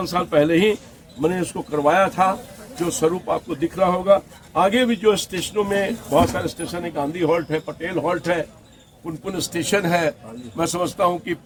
पहले ही मैंने इसको करवाया था, जो स्वरूप आपको दिख रहा होगा। आगे भी जो स्टेशनों में बहुत सारे स्टेशन है, गांधी हॉल्ट है, पटेल हॉल्ट है, पुनपुन स्टेशन है, मैं समझता हूं कि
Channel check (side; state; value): both; identical; correlation 1.00